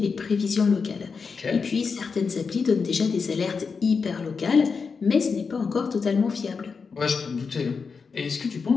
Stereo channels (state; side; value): quieter; right; 5.2 dB